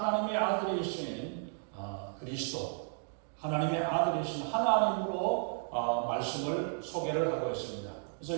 아들이신 그리스도, 하나님의 아들이신 하나님으로 말씀을 소개를 하고 있습니다.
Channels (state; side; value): silent; left; 55 dB below the other